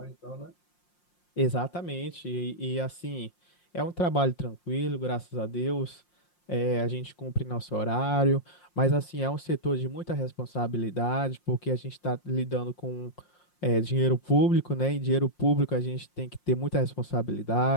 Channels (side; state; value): right; late; 5.6 ms